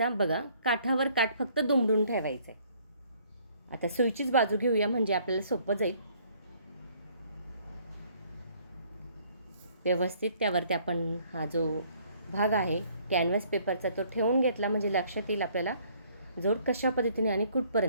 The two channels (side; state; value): both; inverted; correlation -0.61